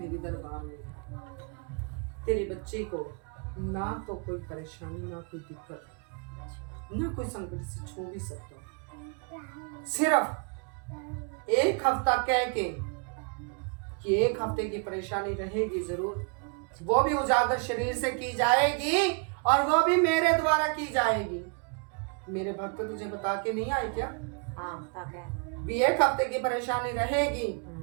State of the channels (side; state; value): left; quieter; 37.1 dB